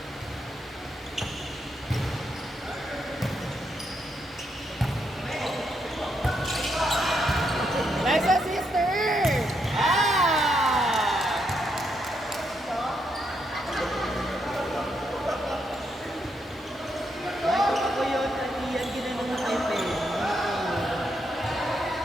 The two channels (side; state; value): both; normal; correlation 0.79